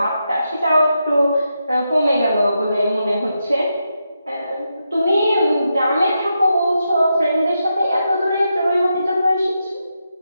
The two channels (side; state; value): both; inverted; correlation -0.85